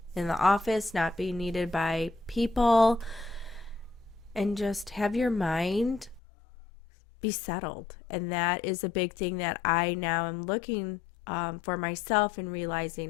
in the office, not being needed by people, and just have your mind be settled. And that is a big thing that I now am looking for myself and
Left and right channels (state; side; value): drops out; right; at 6.2 s